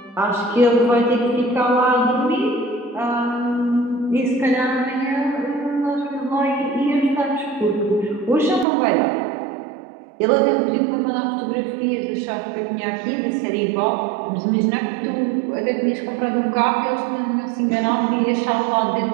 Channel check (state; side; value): drops out; left; at 8.7 s